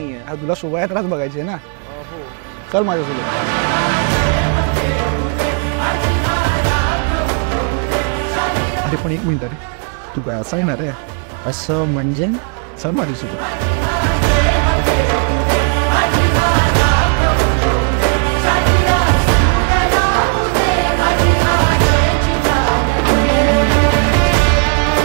तुला शोभायात्राच बघायची आहे ना? हो. चल माझ्यासोबत. अरे पण एक मिनिट रे, तू काय असं येणार आहे? असं म्हणजे? चल माझ्यासोबत.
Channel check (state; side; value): quieter; left; 39.8 dB